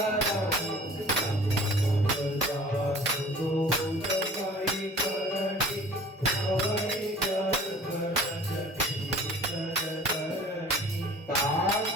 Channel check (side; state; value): both; normal; correlation 0.47